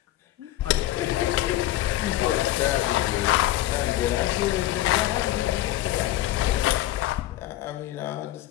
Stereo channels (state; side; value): quieter; right; 14.9 dB